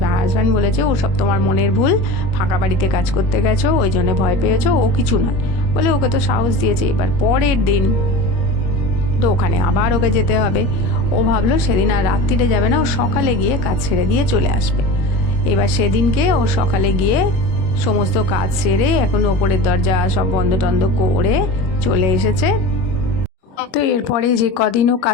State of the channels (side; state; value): right; late; 21 ms